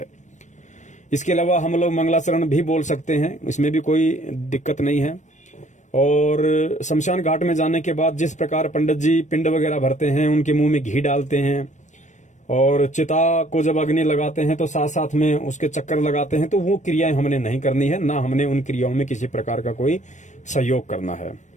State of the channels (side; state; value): right; late; 0.35 ms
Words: इसके अलावा हम लोग मंगलाचरण भी बोल सकते हैं, इसमें भी कोई दिक्कत नहीं है। और शमशान घाट में जाने के बाद जिस प्रकार पंडित जी पिंड वगैरह भरते हैं, उनके मुंह में घी डालते हैं, और चिता को जब अग्नि लगाते हैं तो साथ साथ में उसके चक्कर लगाते हैं, तो वो क्रियाएं हमने नहीं करनी है, ना हमने उन क्रियाओं में किसी प्रकार का कोई सहयोग करना है।